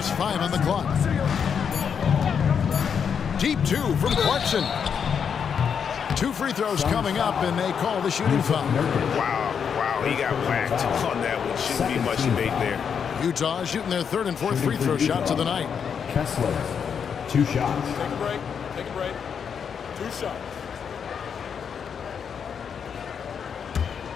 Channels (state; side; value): quieter; right; 7.1 dB